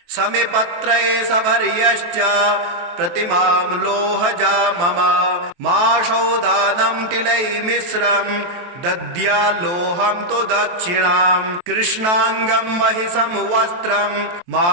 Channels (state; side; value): late; left; 23 ms